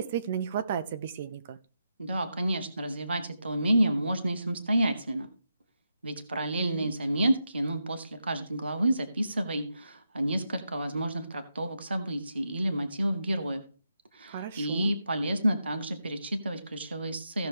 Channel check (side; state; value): both; inverted; correlation -0.85